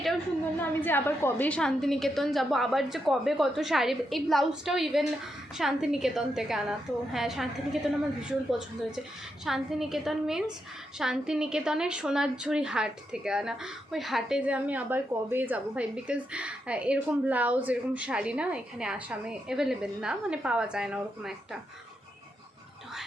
সুন্দর না? আমি যে আবার কবে শান্তিনিকেতন যাব, আবার যে কবে কত শাড়ি। এই ব্লাউজটাও ইভেন শান্তিনিকেতন থেকে আনা। তো হ্যাঁ, শান্তিনিকেতন আমার ভীষণ পছন্দ হয়েছে। শান্তিনিকেতন মিন্স শান্তিনিকেতনের সোনারঝুরি হাট থেকে আনা। ওই হাটে যে আমি আবার কবে যাব ভাই, বিকজ এরকম ব্লাউজ, এরকম শাড়ি না এখানে আসামে অ্যাভেলেবেল না, পাওয়া যায় না ওরকম একটা। তো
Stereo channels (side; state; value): both; normal; correlation 0.83